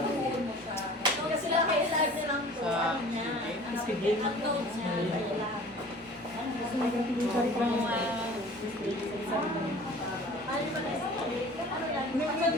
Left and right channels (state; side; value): normal; both; correlation 0.45